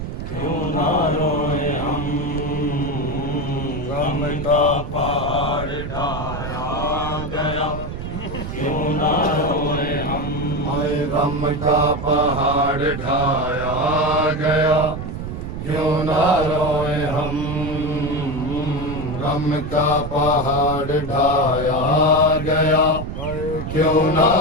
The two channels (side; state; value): right; noise; rumble, 6 dB below the sound